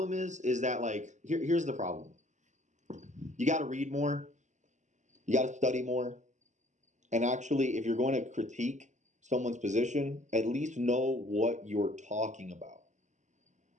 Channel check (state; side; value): late; left; 0.34 ms